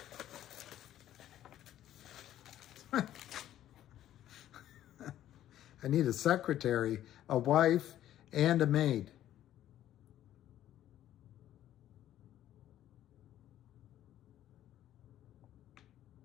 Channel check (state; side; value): quieter; right; 12.3 dB